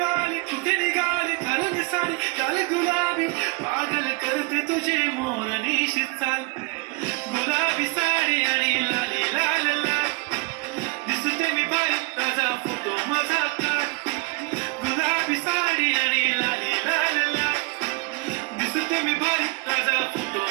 कुठे निघाली घालून साडी चाल गुलाबी, पागल करते तुझे मोरनीशी चाल. गुलाबी साडी आणि लाली लाल लाल, दिसते मी भारी ताजा फोटो माझा काढ. गुलाबी साडी आणि लाली लाल लाल, दिसते मी भारी ताजा फोटो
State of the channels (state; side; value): quieter; left; 27.3 dB